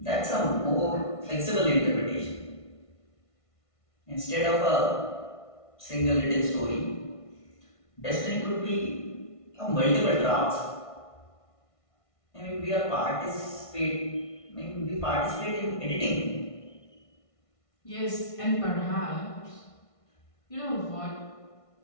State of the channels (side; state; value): right; late; 1.5 ms